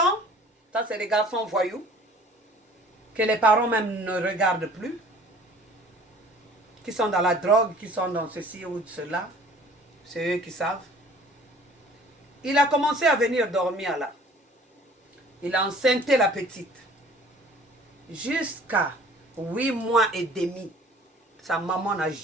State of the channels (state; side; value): normal; both; correlation 0.50